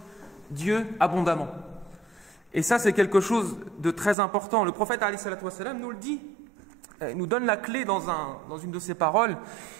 Dieu abondamment. Et ça, c'est quelque chose de très important. Le prophète alayhi salatu wa sallam nous le dit. Il nous donne la clé dans une de ses paroles.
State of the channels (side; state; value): left; drops out; at 4.2 s